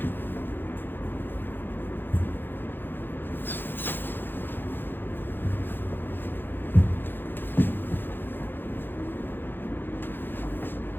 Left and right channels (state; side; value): late; right; 0.098 ms